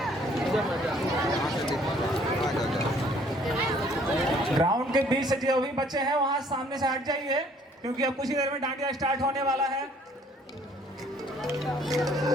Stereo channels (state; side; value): normal; both; correlation 0.60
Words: ग्राउंड के बीच से जो भी बच्चे हैं वहां सामने से हट जाइए, क्योंकि अब कुछ ही देर में डांडिया स्टार्ट होने वाला है।